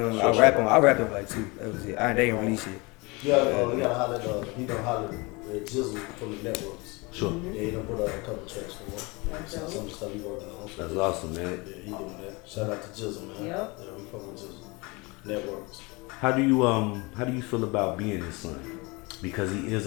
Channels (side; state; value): right; quieter; 26.3 dB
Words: rap on like 2. That was it. They ain't release it. You gotta holler at, he done holler at Jizzle from the networks. Sure. Yeah, he done put out a couple tracks for him. Some of the stuff he working on. So That's awesome, man. yeah, he doing that. Shout out to Jizzle, man. Yep. Yeah, we fucking with Jizzle. Networks. How do you feel about being his son? Because he is